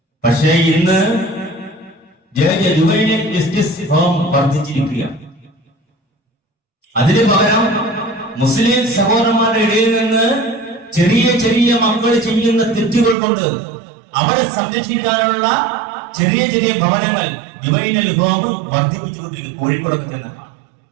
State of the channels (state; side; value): drops out; left; at 13.2 s